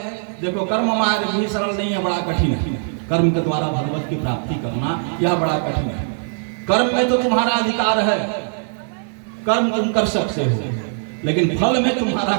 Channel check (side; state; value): left; silent; 65 dB below the other